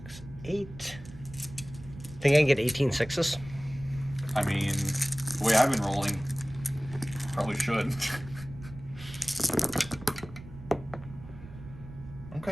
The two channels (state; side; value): noise; right; rumble, 15 dB below the sound